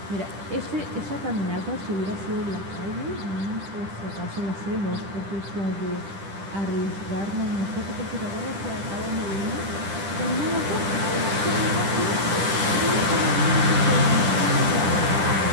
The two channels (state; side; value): late; left; 10 ms